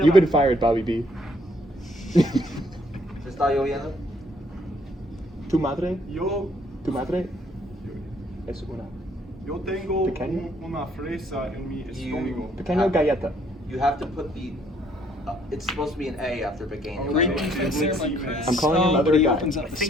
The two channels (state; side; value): normal; both; correlation 0.66